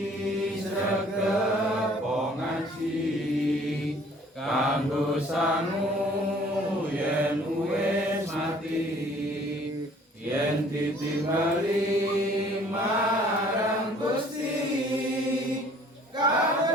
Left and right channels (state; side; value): normal; both; correlation 0.55